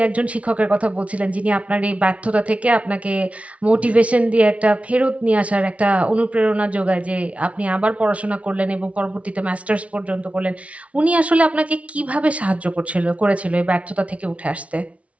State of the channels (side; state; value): left; late; 0.064 ms